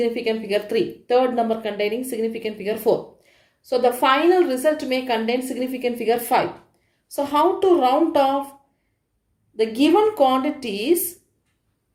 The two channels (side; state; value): both; identical; correlation 1.00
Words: figure 3. Third number containing significant figure 4. So the final result may contain significant figure 5. So how to round off the given quantities?